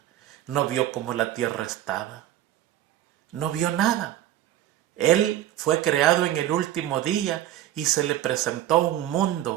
no vio cómo la tierra estaba, no vio nada. Él fue creado en el último día y se le presentó un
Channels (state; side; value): quieter; left; 12.9 dB